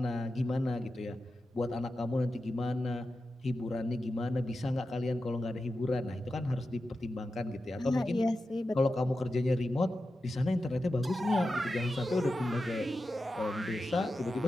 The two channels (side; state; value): both; normal; correlation 0.91